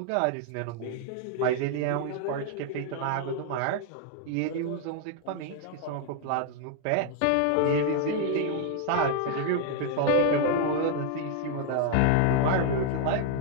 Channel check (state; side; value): different; both; correlation 0.00